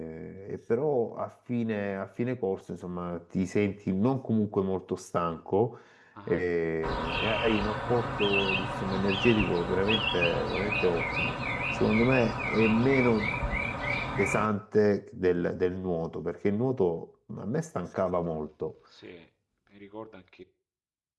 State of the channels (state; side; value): identical; both; correlation 1.00